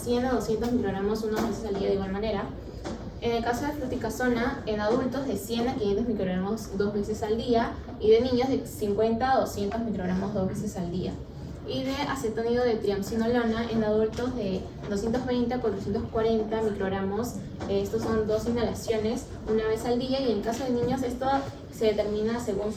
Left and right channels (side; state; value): both; identical; correlation 1.00